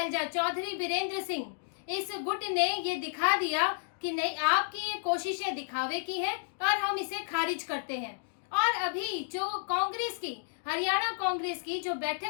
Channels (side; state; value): right; silent; digital silence